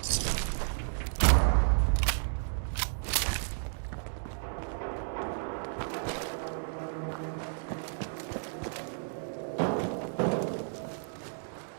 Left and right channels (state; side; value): silent; left; digital silence